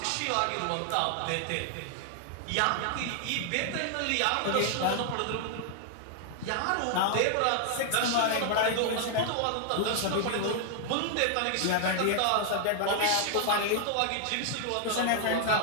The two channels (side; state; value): both; different; correlation 0.00